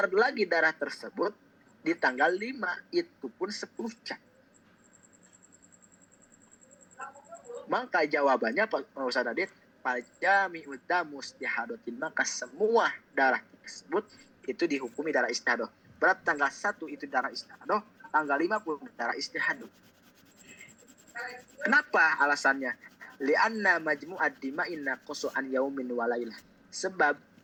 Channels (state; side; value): identical; both; correlation 1.00